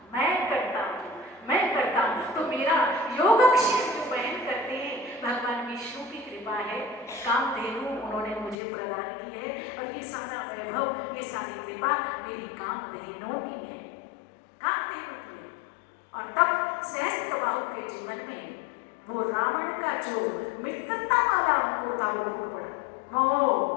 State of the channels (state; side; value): drops out; right; at 8.6 s